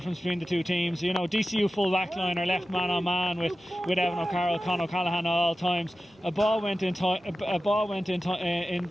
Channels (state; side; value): normal; both; correlation 0.94